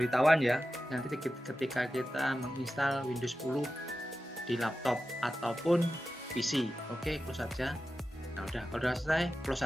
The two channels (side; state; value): both; normal; correlation 0.93